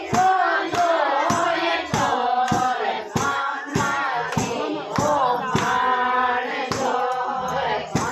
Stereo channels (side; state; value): both; identical; correlation 1.00